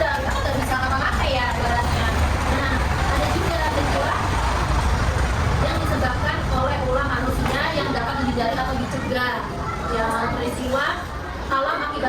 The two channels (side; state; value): both; identical; correlation 1.00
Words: kita nggak bisa ngapa-ngapain ya ibaratnya. Nah, ada juga peristiwa yang disebabkan oleh ulah manusia yang dapat dihindari atau dicegah. Ya, peristiwa alam